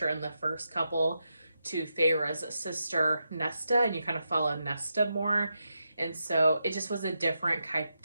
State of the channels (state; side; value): inverted; both; correlation -0.86